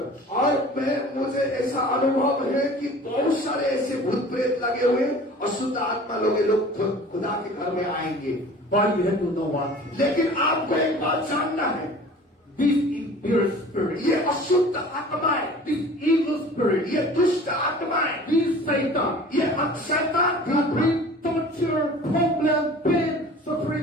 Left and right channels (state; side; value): normal; both; correlation 0.44